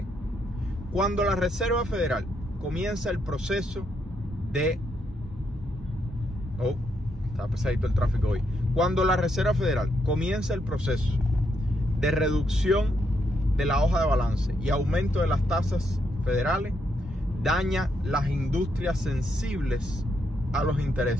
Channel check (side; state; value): both; normal; correlation 0.78